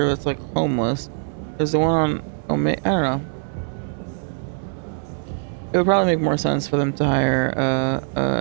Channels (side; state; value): left; silent; 64 dB below the other